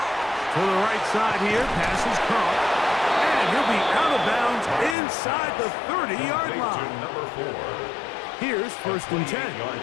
To the right side here, pass is caught. And he'll be out of bounds inside the 30-yard line. Number 4. Here's 1st and 10.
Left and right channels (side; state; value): right; drops out; at 5.0 s